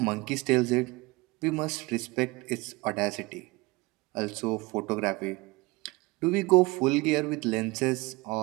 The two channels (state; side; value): quieter; left; 23.4 dB